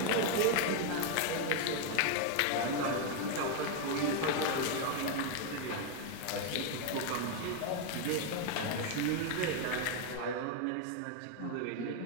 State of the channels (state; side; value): different; both; correlation 0.01